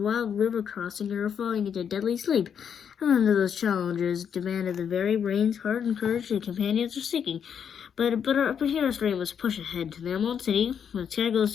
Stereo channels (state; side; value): quieter; right; 7.8 dB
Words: river crossing, or falling into deadly sleep. And none of those challenges demanded the very brains, heart, and courage the companions were seeking. But hero's dream was push ahead to the Emerald City, where the sky